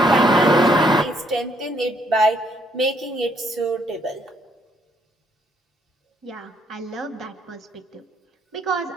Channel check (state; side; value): normal; both; correlation 0.69